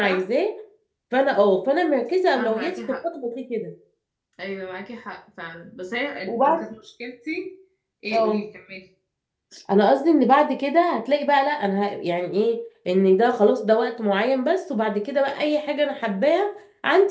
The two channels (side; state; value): both; identical; correlation 1.00